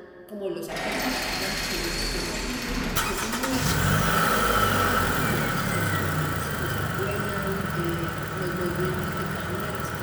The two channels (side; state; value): both; identical; correlation 1.00